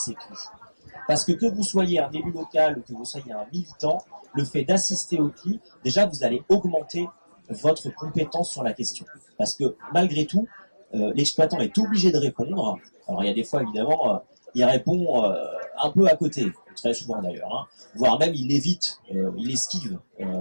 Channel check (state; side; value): inverted; both; correlation -1.00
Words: CLI. Parce que vous soyez un élu local ou que vous soyez un militant, le fait d'assister au CLI, déjà vous allez augmenter votre compétence sur la question. Parce que malgré tout, l'exploitant est obligé de répondre. Alors il y a des fois évidemment, il répond un peu à côté, très souvent d'ailleurs, voire même il évite, il esquive